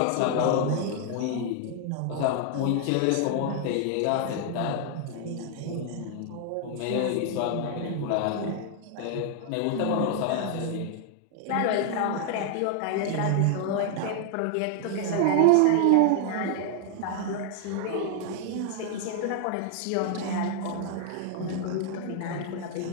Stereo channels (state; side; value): different; both; correlation 0.00